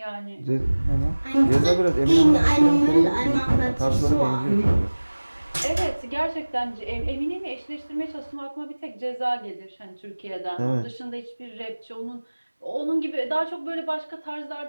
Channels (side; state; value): both; inverted; correlation -1.00